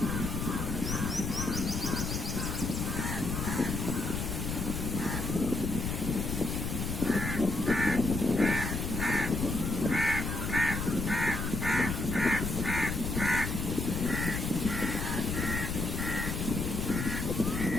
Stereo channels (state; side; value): noise; left; rumble, 2 dB below the sound